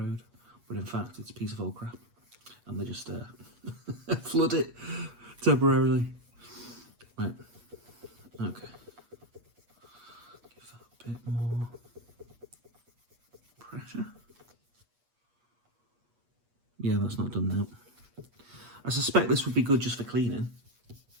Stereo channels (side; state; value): left; late; 8.3 ms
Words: but in fact it's a piece of old crap. And they just flood it temporarily. Right, okay. Give that a bit more pressure. Yeah, that's not done now. I suspect this would be good just for cleaning,